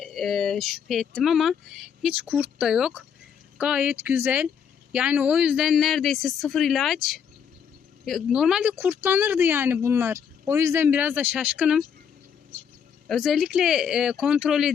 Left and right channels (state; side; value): quieter; right; 7.5 dB